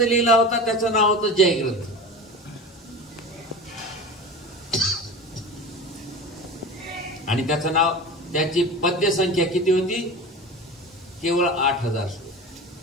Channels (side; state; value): both; normal; correlation 0.32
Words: लिहिला होता त्याचं नाव होतं जय ग्रंथ. आणि त्याचं नाव, त्याची पद्य संख्या किती होती? केवळ 8000